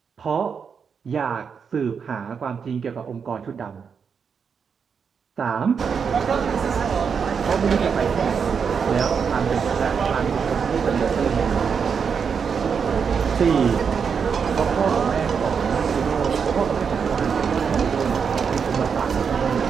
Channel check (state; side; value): quieter; left; 6.4 dB